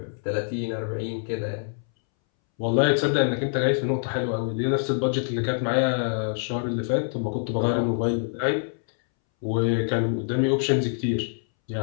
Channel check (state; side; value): silent; right; 62 dB below the other